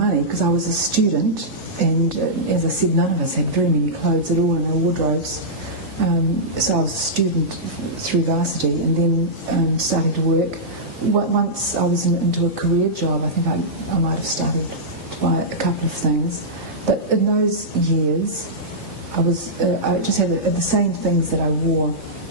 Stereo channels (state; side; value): normal; both; correlation -0.14